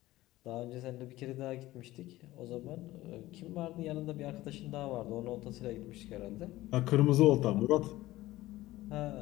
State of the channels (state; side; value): quieter; right; 16.9 dB